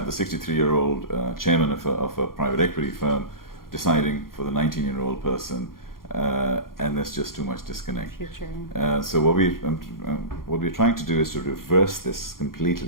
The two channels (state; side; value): late; right; 0.92 ms